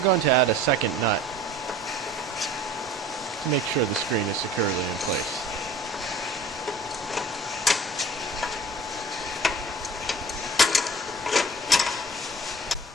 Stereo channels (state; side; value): normal; both; correlation 0.44